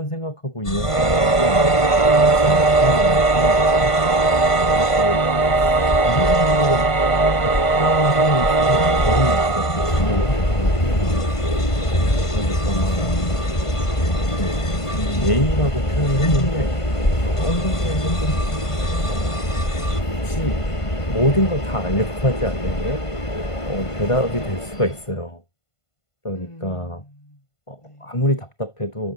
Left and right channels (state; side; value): late; right; 1.5 ms